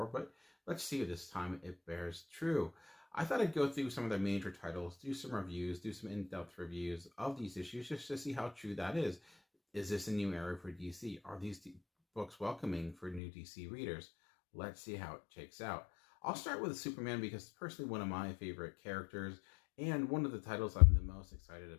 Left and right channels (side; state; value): right; drops out; at 13.2 s